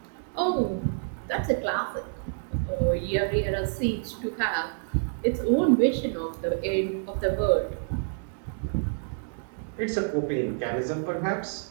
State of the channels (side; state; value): left; silent; digital silence